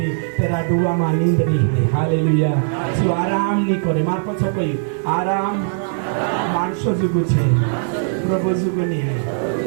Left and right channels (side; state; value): left; silent; 65 dB below the other